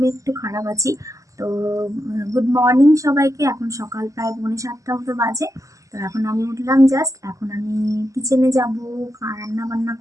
একটু খারাপ আছি। তো গুড মর্নিং সবাইকে। এখন সকাল প্রায় 7:45 মতো বাজে। তো এখন আমি উঠলাম জাস্ট। এখন আমি কিচেনে যাব, রান্না বান্না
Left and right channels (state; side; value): late; left; 0.16 ms